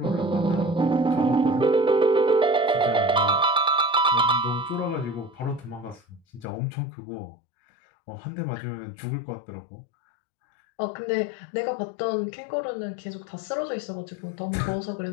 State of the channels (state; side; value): drops out; right; at 6.5 s